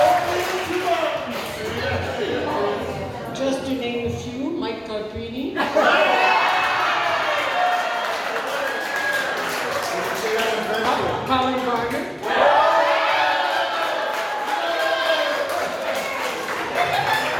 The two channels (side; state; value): both; identical; correlation 1.00